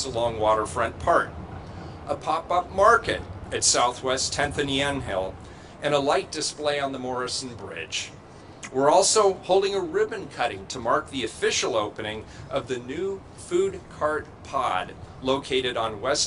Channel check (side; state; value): both; identical; correlation 1.00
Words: along Waterfront Park, a pop-up market at Southwest 10th and Yamhill, and a light display on the Morrison Bridge. We're also holding a ribbon cutting to mark the official opening of the new food cart pod located on